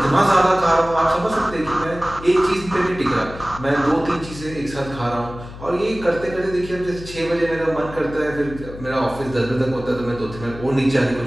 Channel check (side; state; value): left; noise; hum, 14 dB below the sound